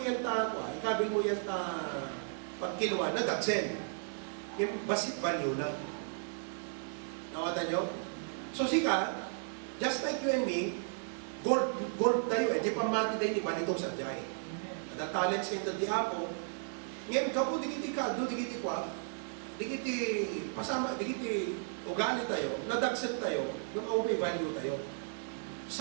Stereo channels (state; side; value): silent; left; digital silence